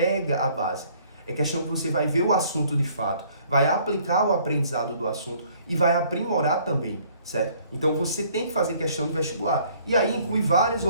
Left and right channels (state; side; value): inverted; both; correlation -0.60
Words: a base. É questão que você vai ver o assunto de fato, vai aplicar o aprendizado do assunto e vai aprimorar também, certo? Então você tem que fazer questão de vestibular. E aí inclui várias